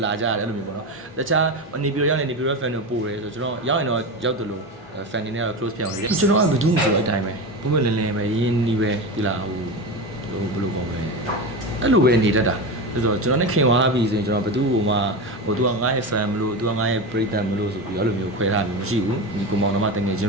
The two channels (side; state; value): both; normal; correlation 0.21